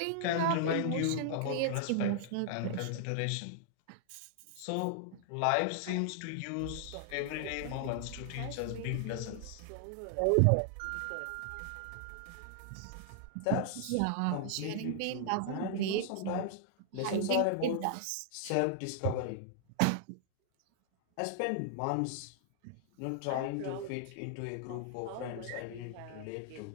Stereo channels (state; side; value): different; both; correlation -0.01